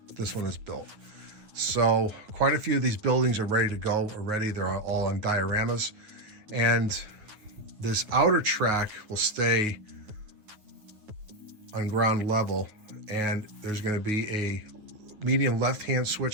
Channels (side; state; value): left; late; 9.5 ms